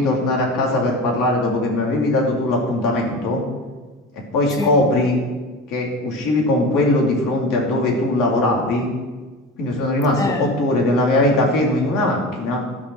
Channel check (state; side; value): normal; both; correlation 0.31